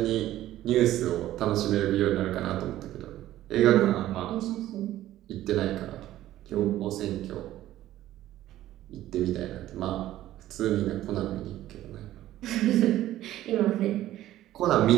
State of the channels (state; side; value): quieter; left; 14.0 dB